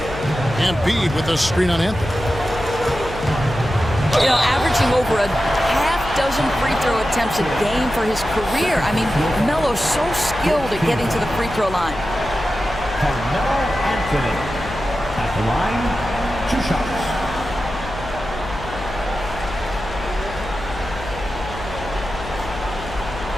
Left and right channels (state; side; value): noise; left; hum, 12 dB below the sound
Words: Embiid with a screen on Anthony. You know, averaging over a half-dozen free throw attempts a game for his career. I mean, Melo's so skilled at getting to the free throw line. Carmelo Anthony at the line, 2 shots.